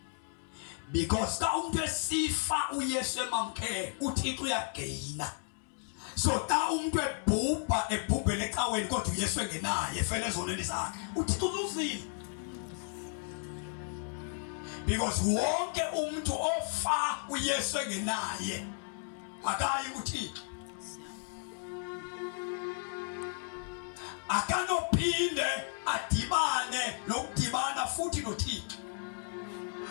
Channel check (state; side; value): silent; right; 55 dB below the other